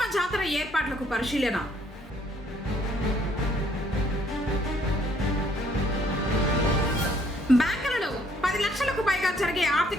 జాతర ఏర్పాట్లకు పరిశీలన. బ్యాంకులలో 10 లక్షలకు పైగా జరిగే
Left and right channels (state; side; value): normal; both; correlation 0.64